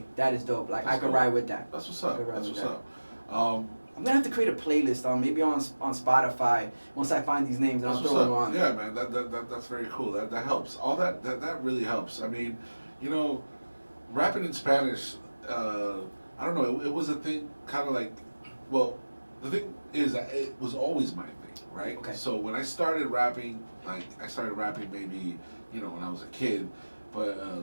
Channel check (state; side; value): inverted; both; correlation -1.00